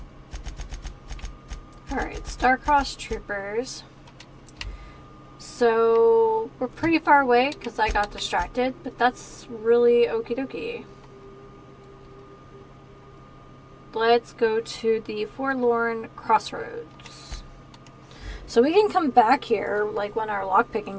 Alright, Star-Crossed Troopers. So we're pretty far away because I got distracted, but that's really okie dokie. Let's go to the Forlorn Crossroads. So we can come back here like when our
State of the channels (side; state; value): both; identical; correlation 1.00